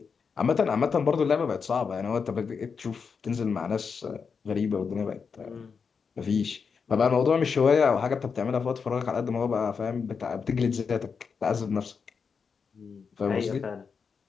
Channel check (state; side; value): quieter; right; 5.8 dB